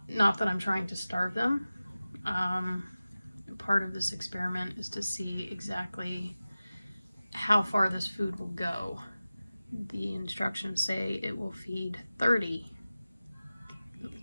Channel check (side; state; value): both; inverted; correlation -0.96